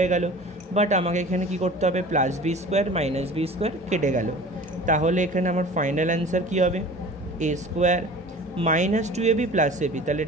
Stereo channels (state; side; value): normal; both; correlation 0.42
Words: গেল, বাট আমাকে এখানে কি করতে হবে, plus B square minus b square কেটে গেল, তাহলে এখানে আমার ফাইনাল অ্যান্সার কী হবে, এ square minus two A B plus A b, তাহলে